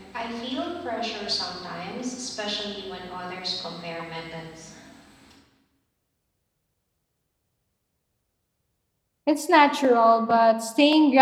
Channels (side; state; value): both; identical; correlation 1.00